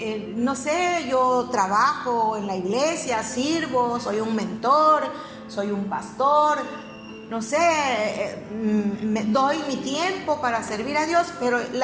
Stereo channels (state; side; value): identical; both; correlation 1.00